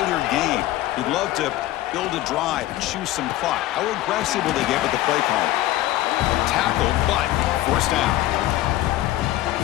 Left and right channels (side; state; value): right; quieter; 15.4 dB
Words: game. You'd love to build a drive and choose some clock. How aggressive will they get with the play call? Tackle, but forced down.